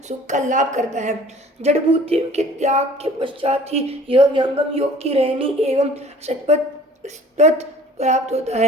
सुख का लाभ करता है। जड़भूति के त्याग के पश्चात ही यह व्यंगम योग की रहनी एवं सतपथ प्राप्त होता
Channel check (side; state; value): both; normal; correlation 0.49